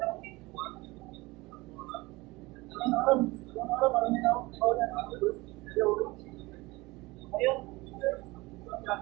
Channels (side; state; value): left; quieter; 22.2 dB